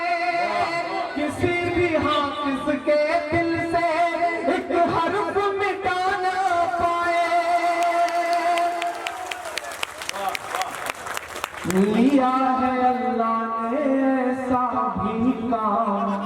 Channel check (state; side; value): identical; both; correlation 1.00